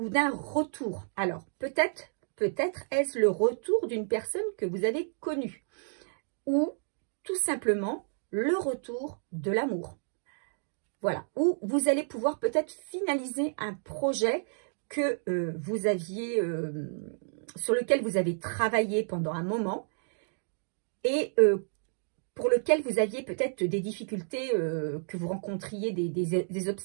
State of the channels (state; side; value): silent; left; digital silence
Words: d'un retour. Alors, peut-être est-ce le retour d'une personne que vous avez connue ou tout simplement le retour de l'amour. Voilà, ou vous allez pouvoir peut-être finaliser un projet que vous aviez, sur lequel vous avez travaillé pendant un moment et pour lequel vous aviez peut-être des difficultés, que vous rencontriez des